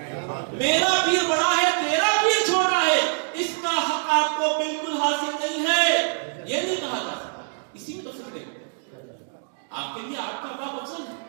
میرا پیر بڑا ہے تیرا پیر چھوٹا ہے، اس کا حق آپ کو بالکل حاصل نہیں ہے. یہ نہیں کہا جا سکتا. اسی میں تو فکر ہے، آپ کے لیے آپ کا باپ افضل ہے،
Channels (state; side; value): silent; left; digital silence